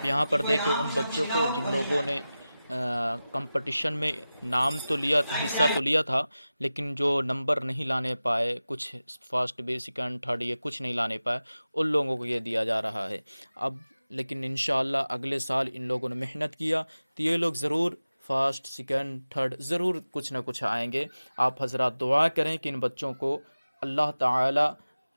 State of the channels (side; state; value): both; inverted; correlation -0.95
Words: यहाँ पर देखिए उन बच्चों को जिन लोगों ने कंपटीशन में नाम तो लिया, हिस्सा तो लिया था, लेकिन जो नंबर नहीं लाने पाए, कुछ फर्स्ट बी सेकंड थर्ड ये कुछ नहीं लाने पाए, उन लोगों को ये दिया जा रहा है। अब लेकिन इंशाअल्लाह अगले साल इन लोगों ने मेहनत किया तो ये लोग ज़रूर फर्स्ट सेकंड थर्ड ज़रूर कुछ ना कुछ आएंगे। आप हज़रात दुआ करें कि इन बच्चों को अल्लाह ताला